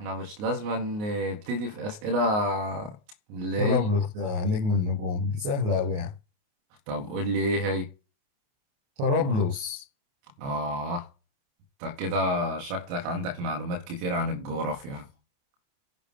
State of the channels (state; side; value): late; left; 28 ms